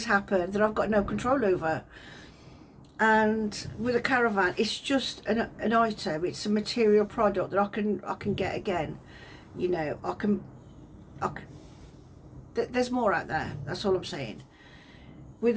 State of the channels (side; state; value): both; identical; correlation 1.00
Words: happen that I've got no control over. And with a caravan, it's just an item, it's a material product that I can get again. You know, there's more out there, that's all I'm saying. With